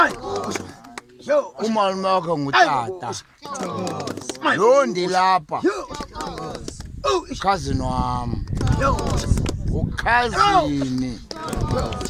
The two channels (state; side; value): identical; both; correlation 1.00